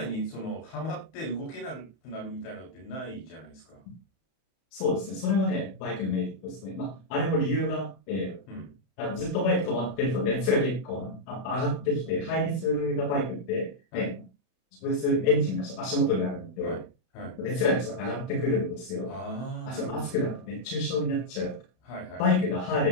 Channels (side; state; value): right; late; 32 ms